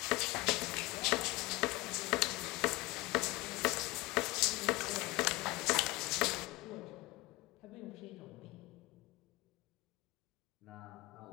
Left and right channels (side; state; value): right; quieter; 21.9 dB